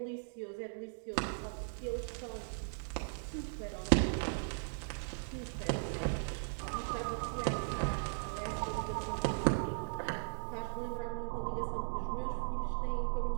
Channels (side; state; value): left; silent; digital silence